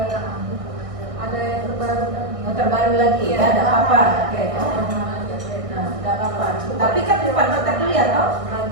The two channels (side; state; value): left; late; 1.6 ms